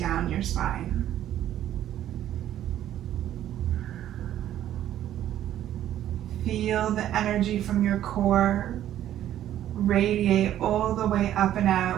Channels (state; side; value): quieter; left; 11.9 dB